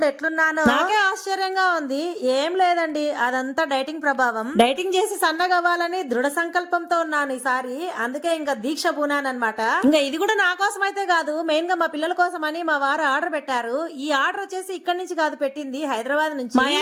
ఎట్లున్నానో నాకే ఆశ్చర్యంగా ఉంది. ఏం లేదండి, అదంతా డైటింగ్ ప్రభావం. డైటింగ్ చేసి సన్నగవ్వాలని దృఢ సంకల్పంతో ఉన్నాను ఈసారి. అందుకే ఇంకా దీక్ష పూనానమాట. ఇంకా ఇది కూడా నా కోసం అయితే కాదు, మెయిన్ గా మా పిల్లల కోసం అని మా వారు ఆర్డర్ పెట్టారు. ఈ ఆర్డర్ వచ్చేసి ఇక్కడి నుంచి కాదు, పెట్టింది హైదరాబాద్ నుంచి. మా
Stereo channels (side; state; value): both; identical; correlation 1.00